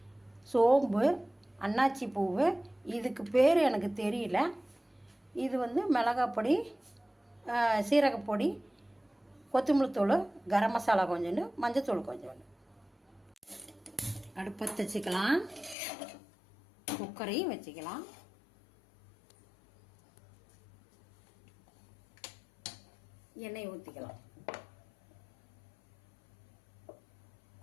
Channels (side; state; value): right; drops out; at 15.8 s